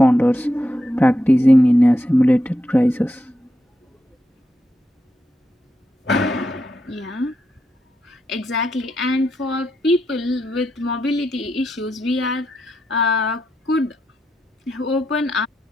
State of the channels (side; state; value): both; normal; correlation 0.84